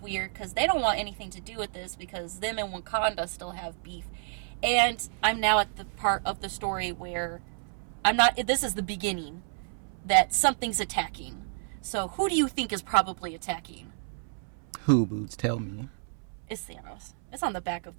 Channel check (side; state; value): left; silent; 58 dB below the other